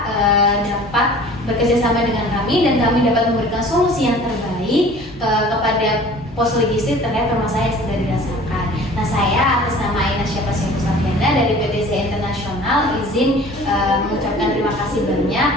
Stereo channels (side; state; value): both; normal; correlation 0.46